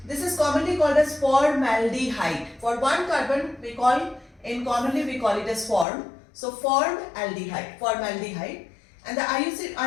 This is commonly called as formaldehyde. For one carbon we call it as form. So formaldehyde, formaldehyde. And the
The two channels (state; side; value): drops out; right; at 5.9 s